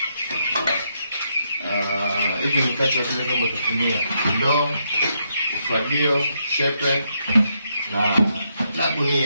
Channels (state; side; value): inverted; both; correlation -0.78